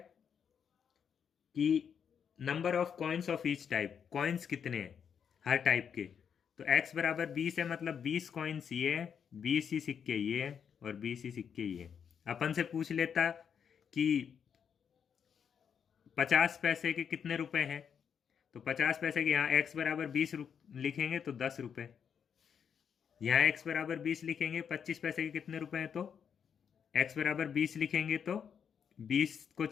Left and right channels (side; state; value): right; quieter; 7.5 dB